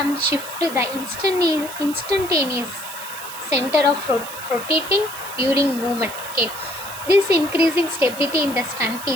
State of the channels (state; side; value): noise; right; hiss, 12 dB below the sound